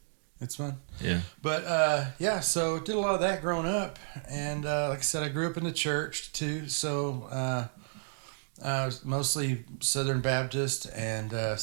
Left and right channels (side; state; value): left; silent; digital silence